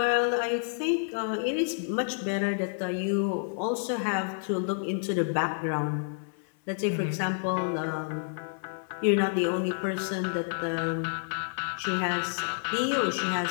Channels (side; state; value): right; silent; 57 dB below the other